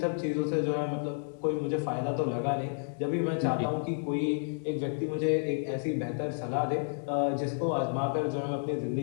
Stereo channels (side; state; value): right; silent; digital silence